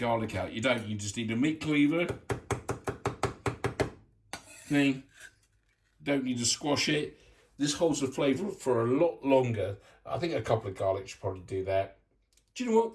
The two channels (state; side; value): identical; both; correlation 1.00